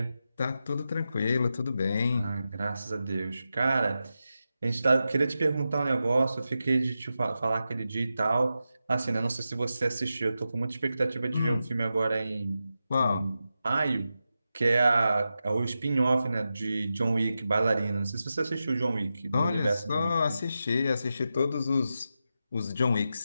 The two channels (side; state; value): both; inverted; correlation -0.90